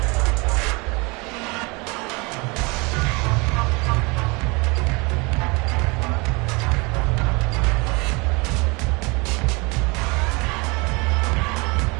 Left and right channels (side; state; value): left; quieter; 27.8 dB